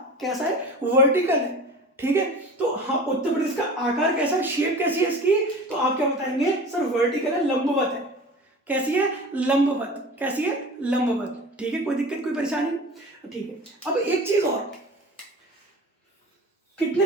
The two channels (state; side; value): normal; both; correlation 0.37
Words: कैसा है, वर्टिकल है, ठीक है। तो हाँ, उत्तर प्रदेश का आकार कैसा है, शेप कैसी है इसकी, तो आप क्या बताएंगे, सर वर्टिकल है, लंबवत है। कैसी है, लंबवत। कैसी है, लंबवत, ठीक है। कोई दिक्कत, कोई परेशानी, ठीक है। अब एक चीज और, कितने